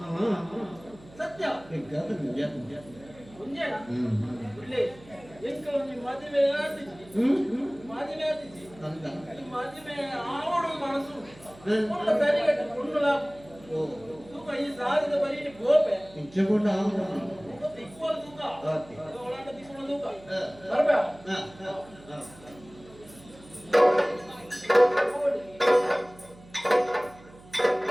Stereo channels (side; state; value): right; noise; hum, 22 dB below the sound